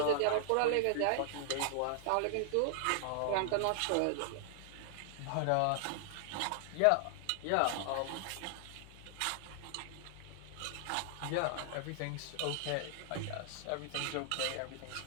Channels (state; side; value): different; both; correlation 0.00